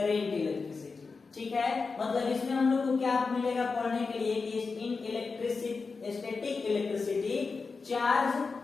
इलेक्ट्रिसिटी। ठीक है, मतलब इसमें हम लोग को क्या मिलेगा पढ़ने के लिए कि in electricity, static electricity, charge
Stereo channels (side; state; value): right; quieter; 4.5 dB